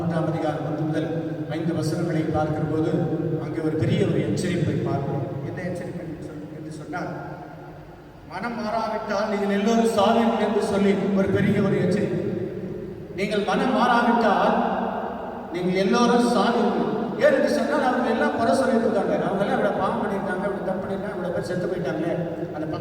அதிகாரம் 1 முதல் 5 வசனங்களை பார்க்கிற போது அங்கே ஒரு பெரிய ஒரு எச்சரிப்பை பார்க்கிறோம். என்ன எச்சரிக்கை என்று சொன்னால், மனம் மாறாவிட்டால் நீங்கள் எல்லோரும் சாவீர்கள் என்று சொல்லி ஒரு பெரிய ஒரு எச்சரிக்கை. நீங்கள் மனம் மாறாவிட்டால் நீங்கள் எல்லோரும் சாவீர்கள். ஏன் என்று சொன்னால் அவங்க எல்லாம் குறை சொல்லிட்டு இருக்காங்க, அவங்க எல்லாம் இவ்வளோ பாவம் பண்ணியிருக்காங்க, இவ்வளோ தப்பு பண்ணியிருக்காங்க, இவ்வளோ பேர் செத்து போயிட்டாங்க. அந்த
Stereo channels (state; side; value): identical; both; correlation 1.00